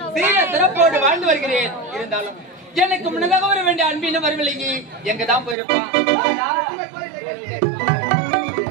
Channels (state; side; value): drops out; left; at 5.6 s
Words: சீர சிறப்போடு வாழ்ந்து வருகிறேன். இருந்தாலும் எனக்கு முன்னதாக வர வேண்டிய அன்பின வரவில்லையே, எங்க தான் போயிருப்பான்.